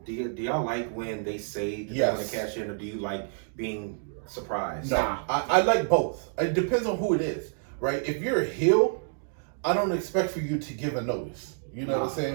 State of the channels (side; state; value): left; silent; 59 dB below the other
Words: Do y'all like when they say that they're going to cash in, or do you like being surprised? No, I like both. It depends on who it is, right? If you're a heel, I don't expect for you to give a notice. You know what I'm